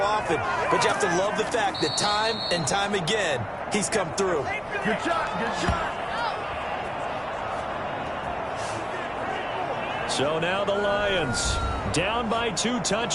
but you have to love the fact that time and time again, he's come through. Good shot, good shot. So now the Lions down by 2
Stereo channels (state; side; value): identical; both; correlation 1.00